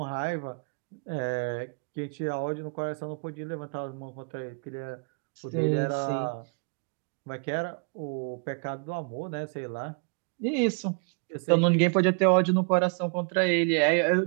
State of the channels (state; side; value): quieter; left; 39.4 dB